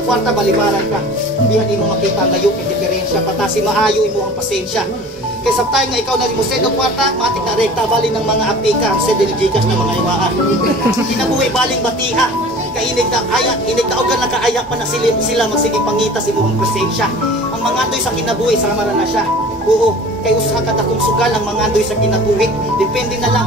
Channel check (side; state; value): both; normal; correlation 0.42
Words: kwarta, balibaran ka. Hindi mo makita ang layo, yung diferensya, patasi maayo imo ang pasensya. Kaya sa tayo nga ikaw na mo send ang kwarta, matik na rekta, bali ng mga apika, send ng Gcash ng mga iwaan. Kinabuhi baling batiha, kainig na ayak, inig na ogan nakaayak pa na sila magsiging pangita si mo ang presensya. Ang mga doy sa kinabuhi, sama na siya. Oo, kay usa ka takong sugal ang mga andoy sa kinabuhi. Depende na lang